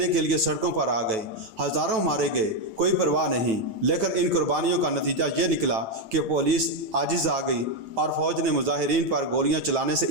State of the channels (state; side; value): late; left; 9.1 ms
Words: کے لیے سڑکوں پر آ گئے، ہزاروں مارے گئے، کوئی پرواہ نہیں۔ لیکن ان قربانیوں کا نتیجہ یہ نکلا کہ پولیس عاجز آ گئی اور فوج نے مظاہرین پر گولیاں چلانے سے